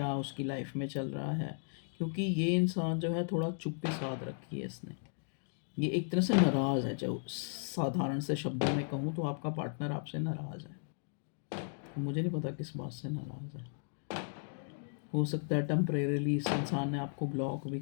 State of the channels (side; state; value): right; silent; digital silence